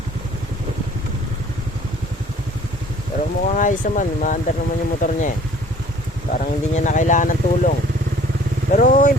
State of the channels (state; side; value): normal; both; correlation 0.53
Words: Pero mukhang ayos naman, maandar naman yung motor niya eh. Parang hindi niya na kailangan ng tulong. Pero in